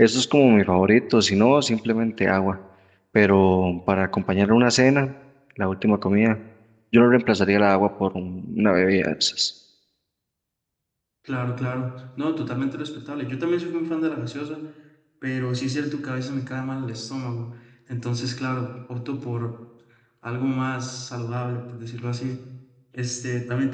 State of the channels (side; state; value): both; identical; correlation 1.00